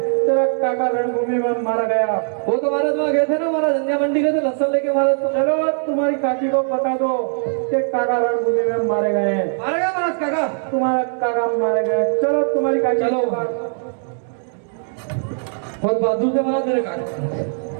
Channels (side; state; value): left; silent; digital silence